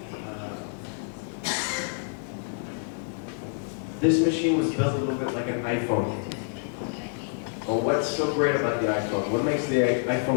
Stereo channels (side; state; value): right; silent; digital silence